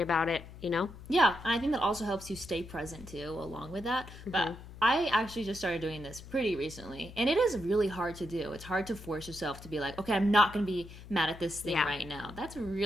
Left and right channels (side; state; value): left; noise; hum, 15 dB below the sound